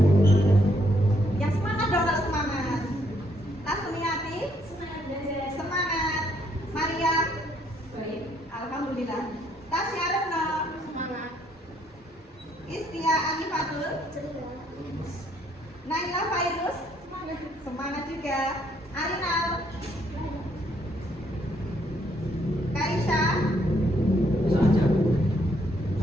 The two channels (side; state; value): both; normal; correlation 0.70